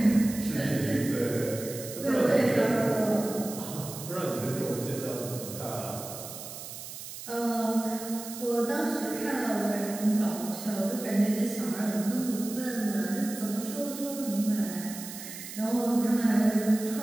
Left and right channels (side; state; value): right; noise; hiss, 11 dB below the sound